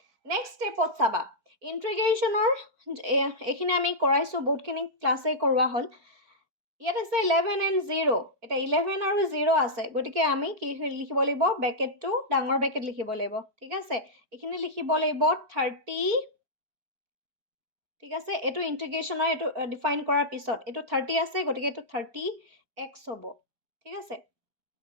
নেক্সট স্টেপত চাবা ইন্টিগ্ৰেশনৰ এখিনি আমি কৰাইছো বহুতখিনি ক্লাসে কৰোৱা হল ইয়াত আছে 11 and 0 এটা 11 আৰু 0 আছে গটিকে আমি কি লিখিব লাগিব ব্ৰ্যাকেটটো ডাঙৰ ব্র্যাকেট লিখিব লাগিব ঠিক আছে এখিনি লিখিব লাগিব 30 ঠিক আছে এটো ইন্টিগ্ৰেশনৰ এটো ডিফাইন কৰাৰ পিছত এটো 30 আছে গটিকে এটো 30x হ'ব ঠিক আছে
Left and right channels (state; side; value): late; left; 4.4 ms